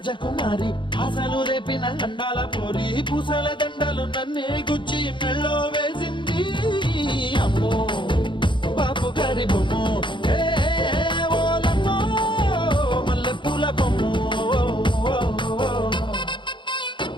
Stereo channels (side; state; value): right; late; 0.23 ms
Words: ఆశలు రేపిన అండాల పోరి పూసల దండలు నన్నే గుచ్చి మెళ్ళో వేసింది అమ్మో బాపు గారి బొమ్ము ఏ ఓలమ్మో మల్లె పూల బొమ్ము